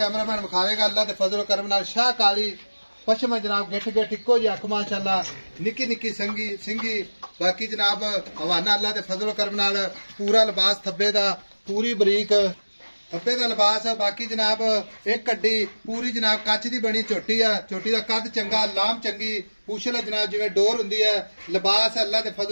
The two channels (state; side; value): inverted; both; correlation -1.00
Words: कैमरामैन विखावेगा अल्लाह दे फजल करम नाल शाह काली पश्चिम जनाब गिठ गिठ इको जी अख माशाअल्लाह निक्की निक्की सिंगी। बाकी जनाब हवाना अल्लाह दे फजल करम नाल पूरा लिबास थब्बे दा पूरी बरीक थब्बे दा लिबास है। बाकी जनाब एक कड्डी पूरी जनाब कच दी बनी चोटी है चोटी दा कद चंगा लाम चंगी पूछल जनाब जिवें डोर हुंदी है लिबास अल्लाह दे